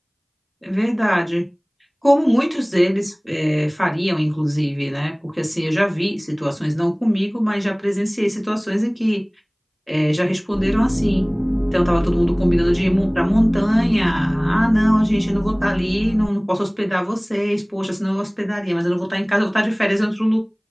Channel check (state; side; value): identical; both; correlation 1.00